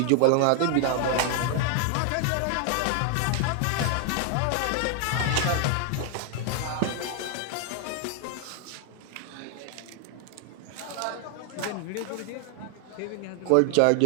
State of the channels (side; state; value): both; different; correlation 0.00